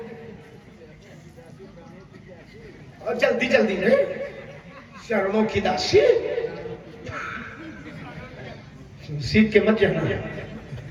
और जल्दी जल्दी में चरणों की दासी, सीख के मत जाना।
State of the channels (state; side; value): identical; both; correlation 1.00